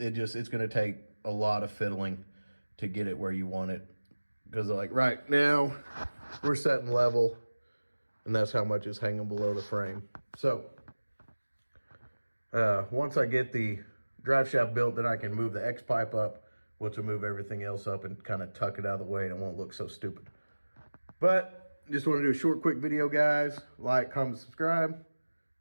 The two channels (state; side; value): inverted; both; correlation -1.00